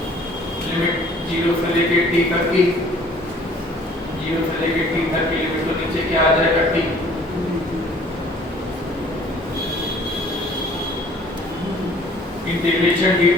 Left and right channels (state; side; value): normal; both; correlation 0.54